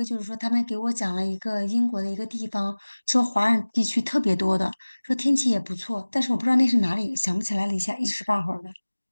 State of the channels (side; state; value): both; inverted; correlation -1.00